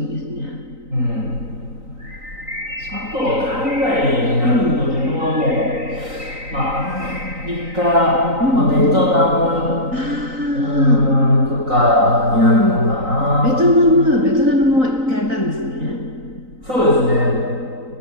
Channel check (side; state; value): left; late; 3.9 ms